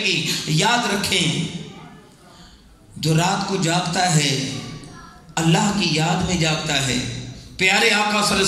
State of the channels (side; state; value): both; identical; correlation 1.00